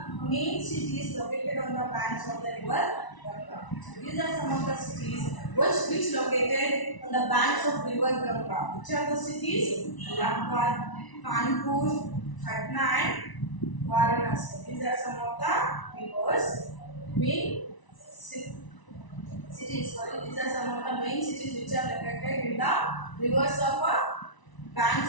main cities located on the banks of the river Ganga. So these are some of the cities which located on the banks of river Ganga. Which are the cities? Allahabad, Kanpur, Patna and Varanasi. These are some of the rivers, main cities. Sorry, these are some of the main cities which are located in the rivers of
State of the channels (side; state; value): right; late; 1.0 ms